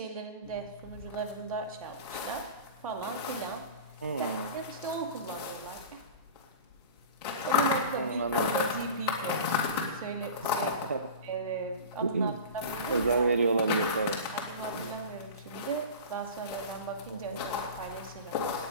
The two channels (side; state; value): both; inverted; correlation -0.33